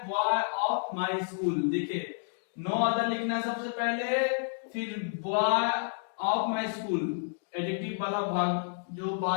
बॉय ऑफ माय स्कूल। देखिए नो अदर लिखना है सबसे पहले, फिर boy of my school, adjective वाला भाग जो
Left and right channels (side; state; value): right; silent; digital silence